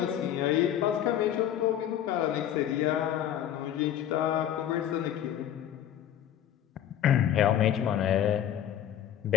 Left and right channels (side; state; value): right; quieter; 10.7 dB